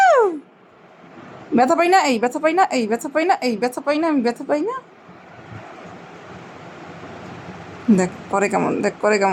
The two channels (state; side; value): identical; both; correlation 1.00